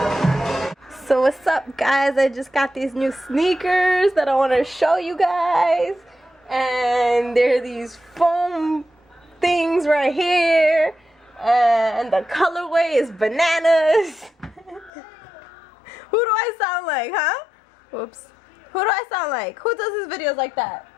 So what's up, guys? I just got these new sneakers that I want to show you guys. And they're these foam things right here. And the colorway is bananas. Who do I sound like, huh? Whoops. Who do I sound like? Who does his videos like that?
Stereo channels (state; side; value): drops out; right; at 14.9 s